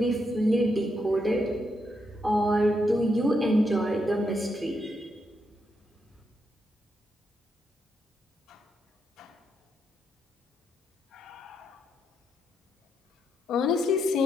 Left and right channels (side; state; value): both; normal; correlation 0.80